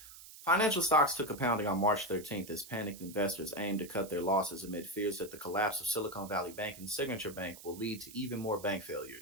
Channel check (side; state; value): right; noise; hiss, 17 dB below the sound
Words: Financial stocks took a pounding on March 13th as panicked investors aimed to cut their losses amid fears that the collapse of Silicon Valley Bank and Signature Bank will lead to even more bank